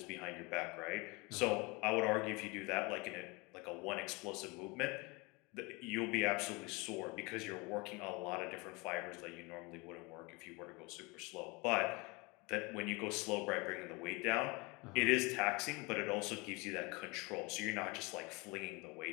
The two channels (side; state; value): right; quieter; 26.8 dB